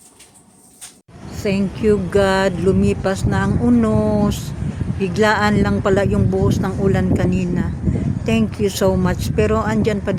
Thank you God, lumipas na ang unos. Biglaan lang pala yung buhos ng ulan kanina. Thank you so much. Pero andyan pa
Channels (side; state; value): both; identical; correlation 1.00